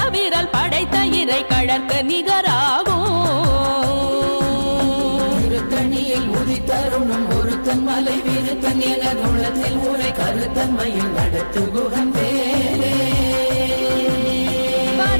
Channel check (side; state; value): both; inverted; correlation -1.00